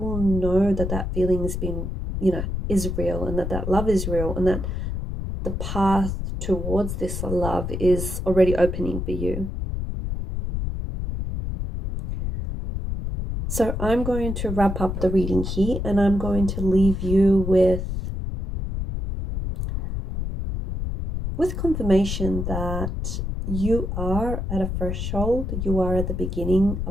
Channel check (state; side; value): noise; left; rumble, 3 dB below the sound